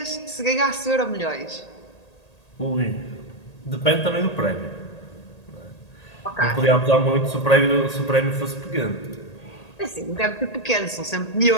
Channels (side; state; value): right; late; 1.8 ms